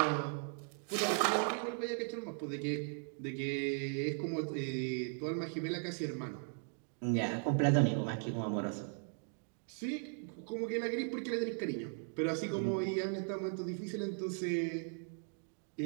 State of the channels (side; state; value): left; silent; 53 dB below the other